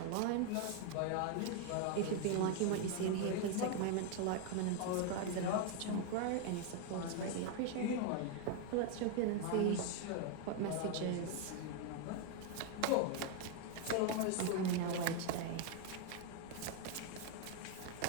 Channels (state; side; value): different; both; correlation 0.01